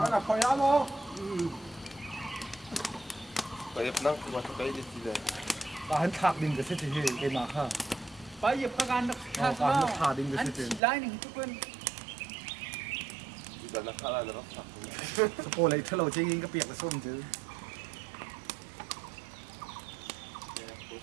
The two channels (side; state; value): left; drops out; at 10.8 s